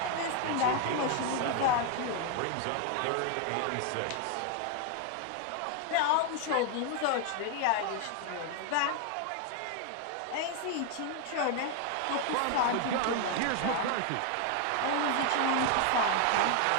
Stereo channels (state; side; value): different; both; correlation 0.01